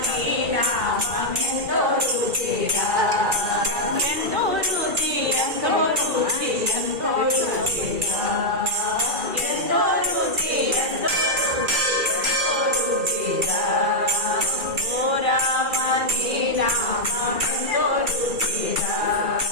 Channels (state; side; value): late; left; 2.3 ms